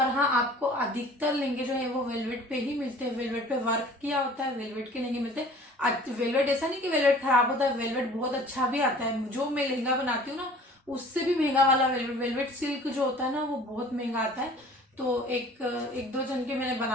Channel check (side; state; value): both; normal; correlation 0.48